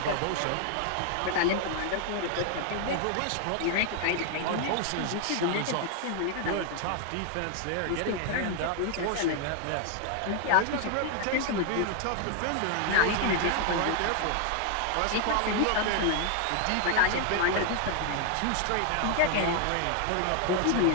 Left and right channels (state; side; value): different; both; correlation 0.00